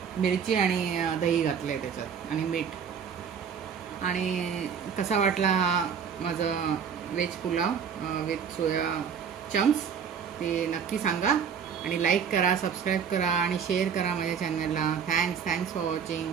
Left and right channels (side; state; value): left; quieter; 7.2 dB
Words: मिरची आणि दही घातलं आहे त्याच्यात आणि मीठ. आणि कसा वाटला माझा veg pulao with soya chunks ते नक्की सांगा आणि लाईक करा, सबस्क्राईब करा आणि शेअर करा माझ्या चॅनलला. Thanks for watching.